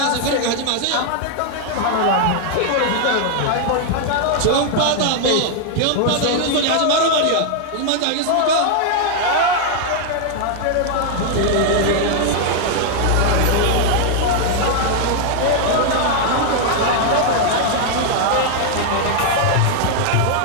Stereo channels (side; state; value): both; different; correlation 0.00